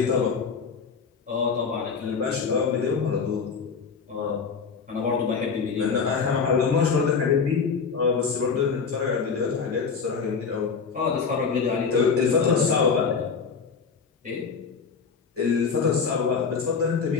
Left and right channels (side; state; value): right; quieter; 5.6 dB